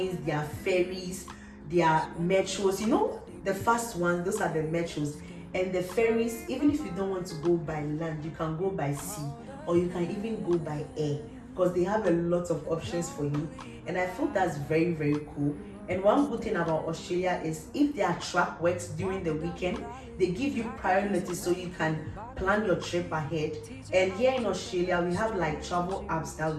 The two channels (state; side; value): identical; both; correlation 1.00